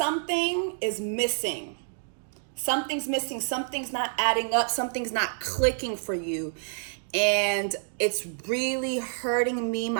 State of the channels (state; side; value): silent; left; digital silence